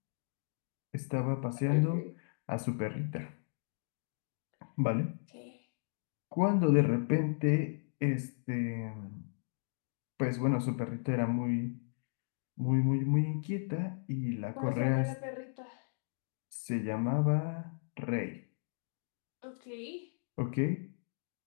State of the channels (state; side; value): silent; right; digital silence